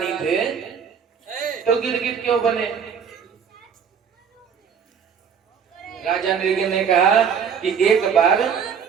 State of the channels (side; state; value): left; quieter; 7.0 dB